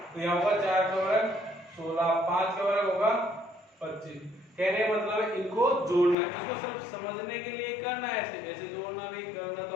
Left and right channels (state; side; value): drops out; right; at 6.2 s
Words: तो यहाँ होगा 4 का वर्ग 16, 5 का वर्ग होगा 25। कहने का मतलब है इनको जोड़ना है। इसको सिर्फ समझने के लिए करना है, ऐसे जोड़ना नहीं करना, तो